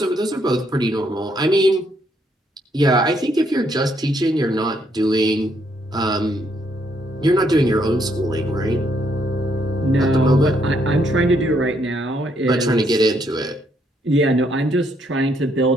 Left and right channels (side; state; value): both; normal; correlation 0.73